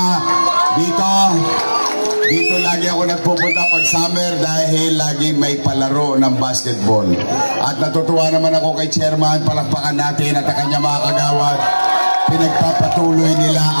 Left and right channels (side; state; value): both; inverted; correlation -1.00